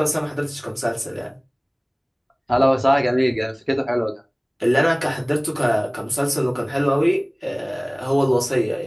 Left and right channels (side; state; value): both; identical; correlation 1.00